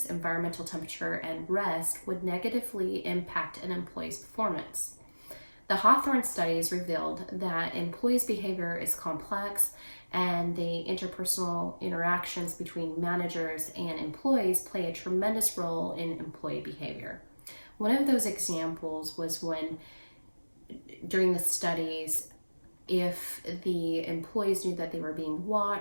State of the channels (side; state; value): both; inverted; correlation -1.00